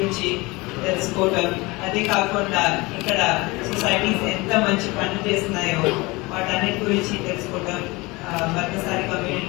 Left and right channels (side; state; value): right; quieter; 23.5 dB